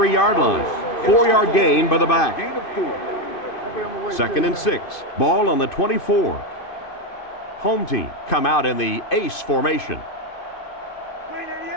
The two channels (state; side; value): late; right; 2.5 ms